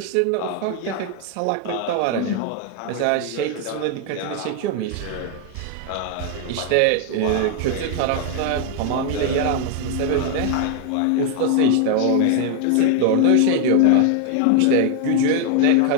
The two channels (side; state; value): both; different; correlation 0.00